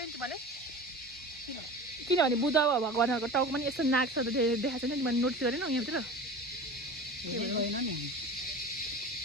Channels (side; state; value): both; normal; correlation 0.34